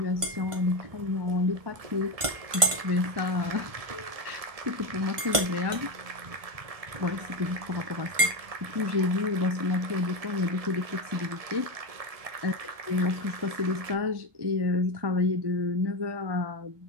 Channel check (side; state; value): left; late; 1.5 ms